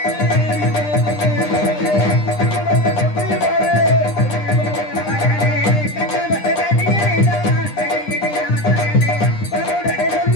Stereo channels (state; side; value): late; right; 9.9 ms